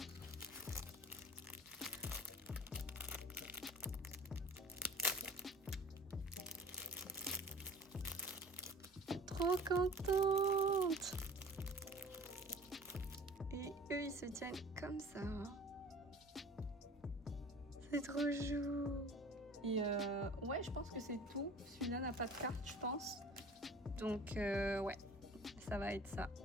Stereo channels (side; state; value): both; normal; correlation 0.44